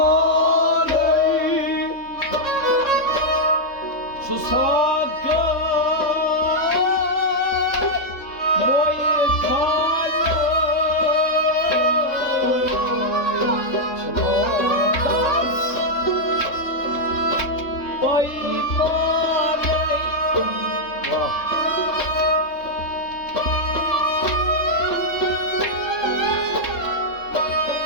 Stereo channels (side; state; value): right; late; 3.7 ms